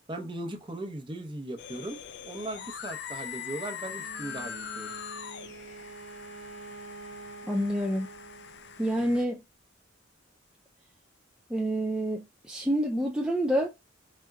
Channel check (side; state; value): both; normal; correlation 0.76